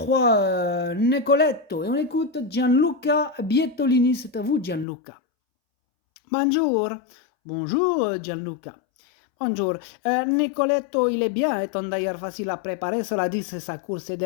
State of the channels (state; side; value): drops out; right; at 4.9 s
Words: Nicoletto, et on écoute Gianluca Bietolini. C'est à vous, Gianluca. Bonjour. Bonjour, Gianluca. Bonjour. Nicoletto, il est bien, étant d'ailleurs facile à préparer. Cela dit, c'est sa course de